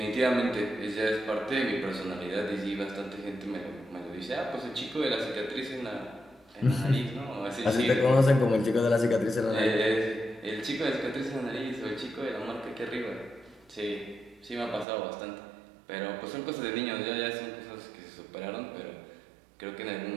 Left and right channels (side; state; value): left; drops out; at 14.9 s